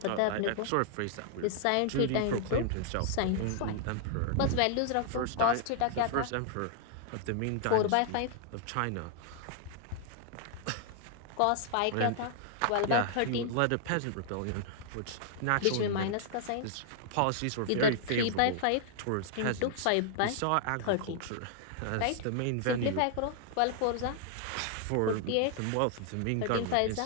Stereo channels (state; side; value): different; both; correlation -0.01